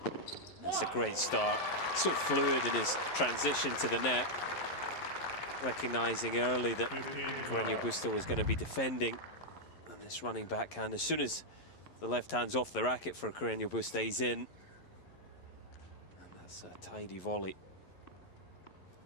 That's a great start. So fluid in his transition to the net. Recognizing early that Carreno Busta was going to be defending. And this running backhand, as soon as the left hand's off the racket for Carreno Busta, he's in. And that's a tidy volley.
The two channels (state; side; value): late; right; 11 ms